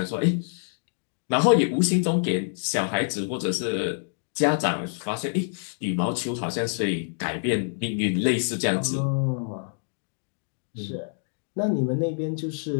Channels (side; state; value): right; silent; digital silence